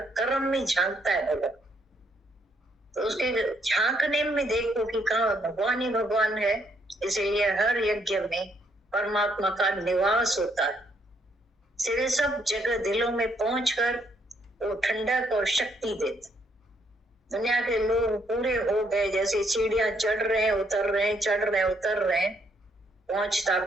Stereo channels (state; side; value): normal; both; correlation 0.71